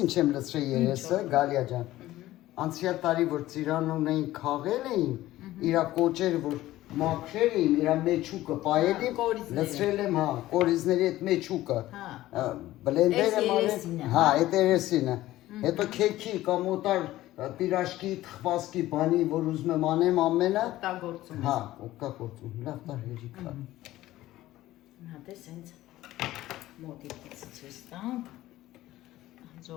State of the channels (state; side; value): quieter; right; 15.7 dB